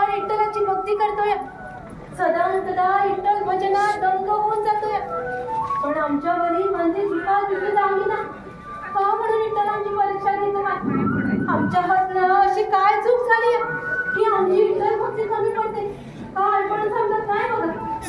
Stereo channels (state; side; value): identical; both; correlation 1.00